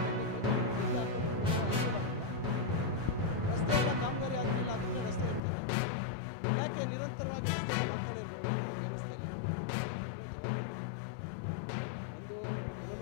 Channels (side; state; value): right; drops out; at 5.4 s